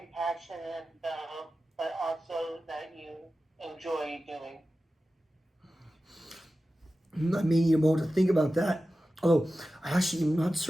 about, but also that you enjoy doing? I may need a moment to think about that. Although I actually am not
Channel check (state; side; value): normal; both; correlation 0.94